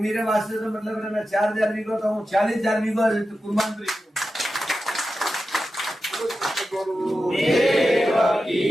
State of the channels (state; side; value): normal; both; correlation 0.92